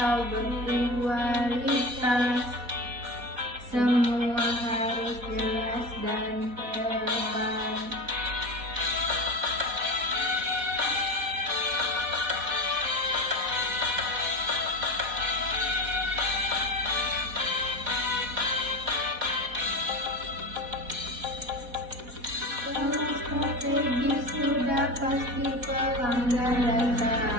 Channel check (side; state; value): left; late; 4.1 ms